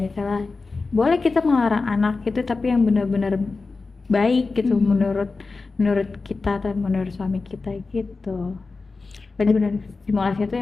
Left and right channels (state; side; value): quieter; right; 4.0 dB